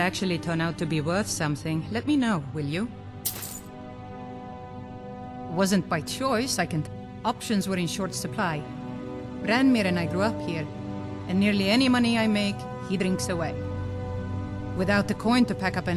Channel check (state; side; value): identical; both; correlation 1.00